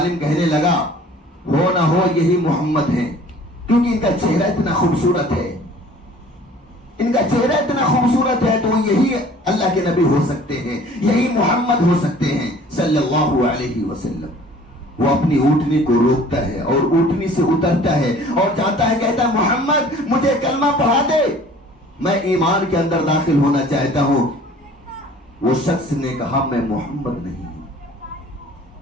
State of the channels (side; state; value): both; normal; correlation 0.50